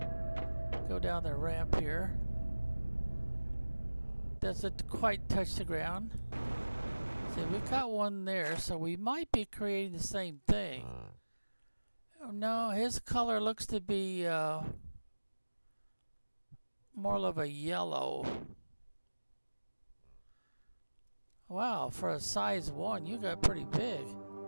Go down the ramp here. Doesn't quite touch the ground. See, we've got one there, so we might be creating the same thing. Oh, no, his color looks to be more of a yellow. Wow, for a size 1, you got pretty big.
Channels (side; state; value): both; inverted; correlation -1.00